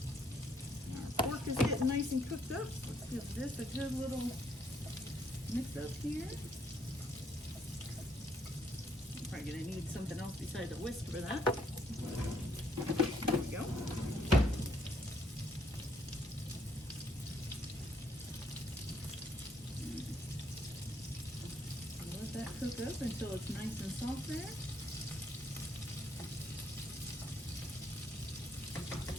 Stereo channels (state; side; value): normal; both; correlation 0.70